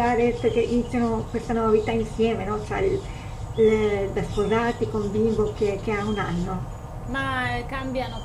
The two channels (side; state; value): both; identical; correlation 1.00